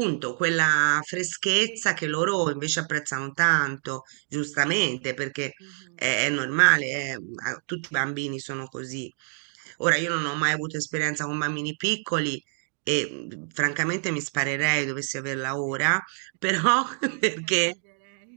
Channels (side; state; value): left; silent; 61 dB below the other